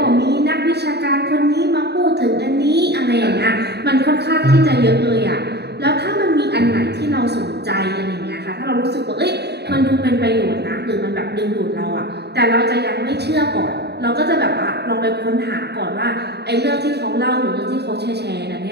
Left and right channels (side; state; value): left; late; 0.48 ms